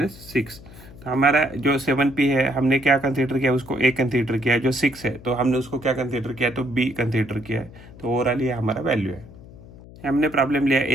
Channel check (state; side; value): noise; left; hum, 19 dB below the sound